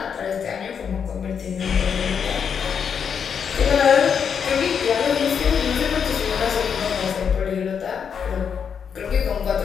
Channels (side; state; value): right; quieter; 7.1 dB